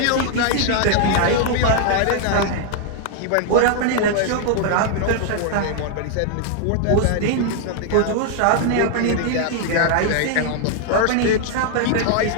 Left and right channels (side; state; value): both; different; correlation 0.00